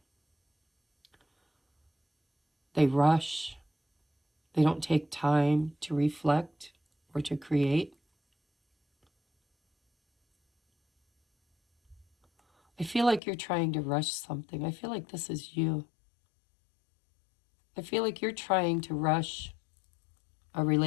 They rush. They don't take time to reflect or to create. I feel like you're trying to rush something. I feel like this is you. I feel like you're trying to rush a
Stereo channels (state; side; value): drops out; right; at 13.2 s